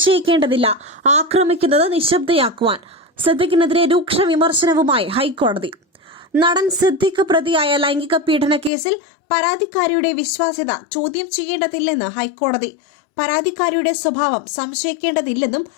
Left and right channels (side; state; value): right; drops out; at 8.7 s